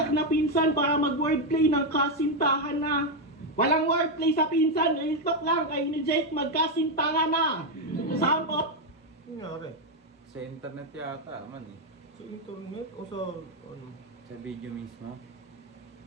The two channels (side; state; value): both; normal; correlation 0.04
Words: na pinsan para mag-wordplay ng kasintahan na. Walang wordplay sa pinsan, real talk lang kayo ni Jake magkasintahan na. Sample, Nangyari? Sa internet yata, man eh. Sa internet o sa ano? Sa video mismo.